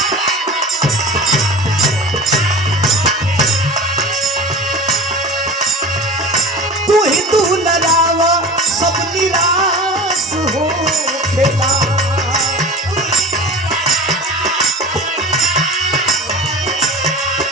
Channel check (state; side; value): normal; both; correlation 0.35